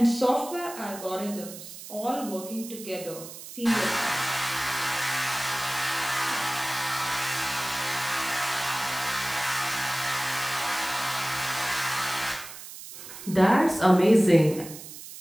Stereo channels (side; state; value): right; noise; hiss, 13 dB below the sound